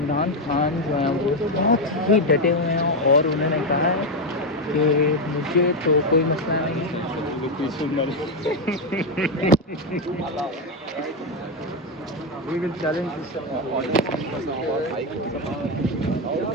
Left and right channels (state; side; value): normal; both; correlation 0.07